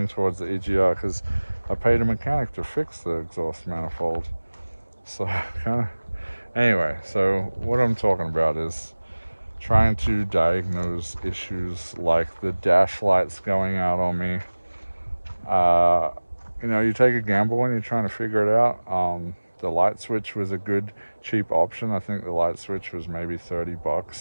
towards the EGR because I paid a mechanic to fix the exhaust manifold. So anyway, so what I'm talking about is trying to diagnose issues like the dash lights going out on me. You know, you take a gamble when you're trying to figure it out. The light switch was a good cheap option. I think the light switch was maybe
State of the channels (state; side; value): inverted; both; correlation -1.00